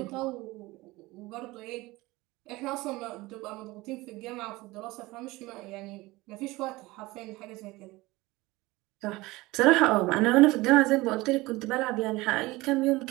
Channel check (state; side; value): quieter; left; 20.7 dB